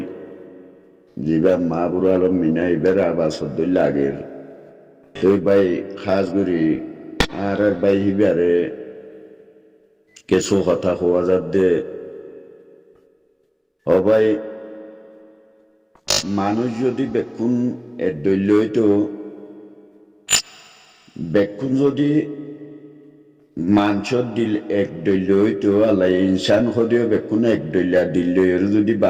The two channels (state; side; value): identical; both; correlation 1.00